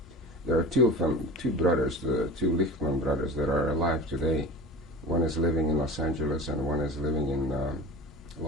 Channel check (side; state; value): both; normal; correlation 0.32